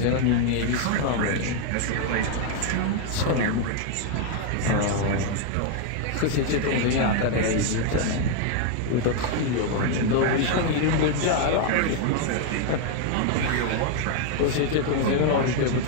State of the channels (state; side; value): different; both; correlation 0.00